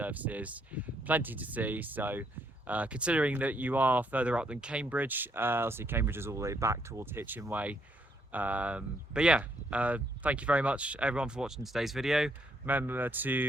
plenty to see. So considering that you are further up than Cambridge, obviously Cambridge is all the way back towards Hitchin Way. But yeah, thank you very much everyone for watching today's video. Remember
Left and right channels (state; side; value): normal; both; correlation 0.72